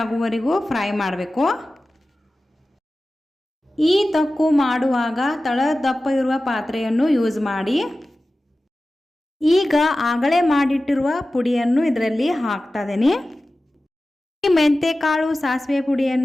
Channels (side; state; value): both; normal; correlation 0.95